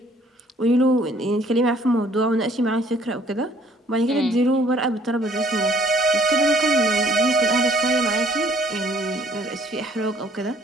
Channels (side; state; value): both; normal; correlation 0.60